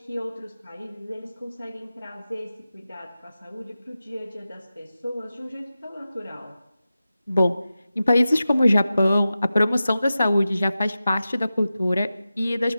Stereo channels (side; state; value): both; inverted; correlation -0.93